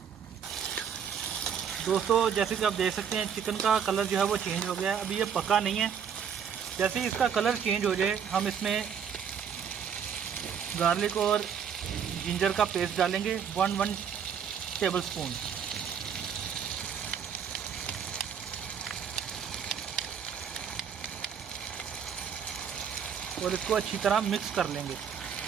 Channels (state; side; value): quieter; left; 7.7 dB